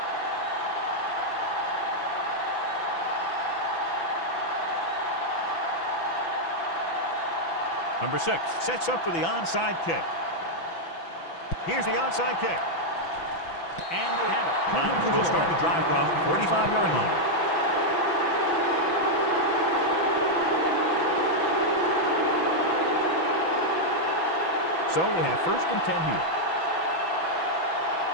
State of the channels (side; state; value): right; late; 6.0 ms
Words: Number 6 sets up for the onside kick. Here's the onside kick. And they have it. Niners will start the drive from 45-yard line. So we have 1st and 10 here.